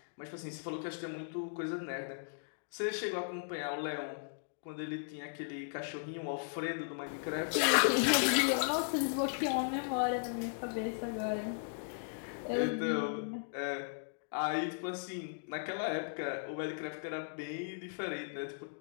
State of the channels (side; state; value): right; silent; digital silence